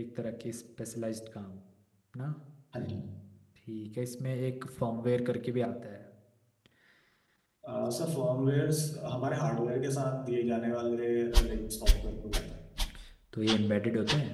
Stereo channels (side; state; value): both; identical; correlation 1.00